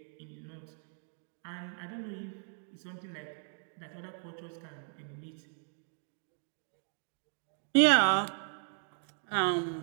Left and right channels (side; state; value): left; silent; 54 dB below the other